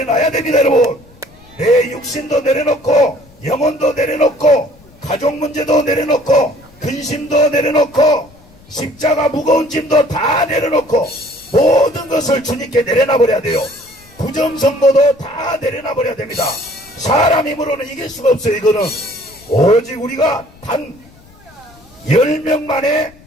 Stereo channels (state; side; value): noise; left; rumble, 26 dB below the sound